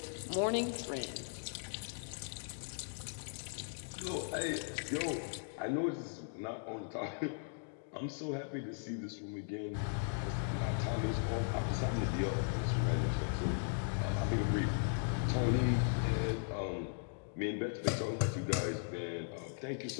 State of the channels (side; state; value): right; silent; digital silence